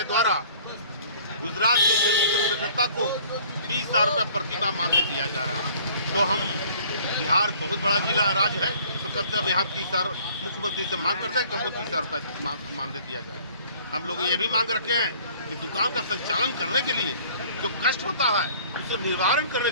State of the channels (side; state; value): both; inverted; correlation -0.53